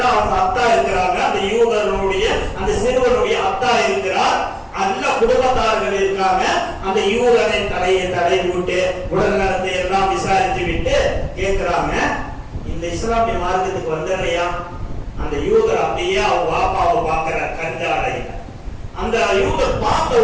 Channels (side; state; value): both; identical; correlation 1.00